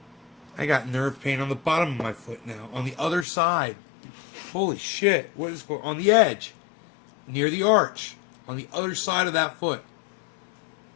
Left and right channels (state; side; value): drops out; right; at 3.2 s